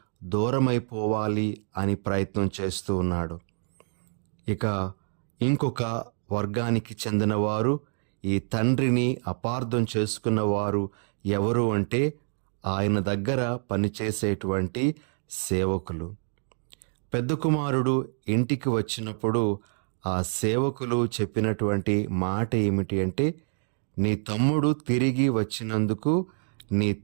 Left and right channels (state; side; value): silent; left; 60 dB below the other